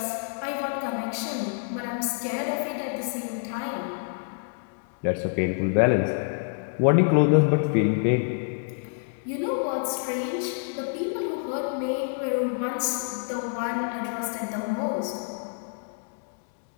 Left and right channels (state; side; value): silent; right; digital silence